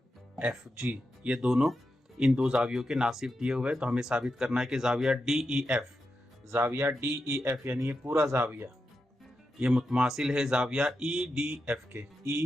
FG, ये दोनों इन दो जावियों के नासिफ दिए हुए हैं। तो हमें साबित करना है कि जाविया DEF यानी ये पूरा जाविया ये मुतमासिल है जाविया EDF के,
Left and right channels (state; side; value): normal; both; correlation 0.88